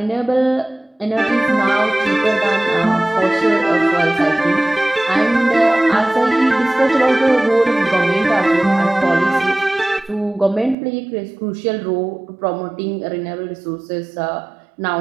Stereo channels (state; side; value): drops out; left; at 10.8 s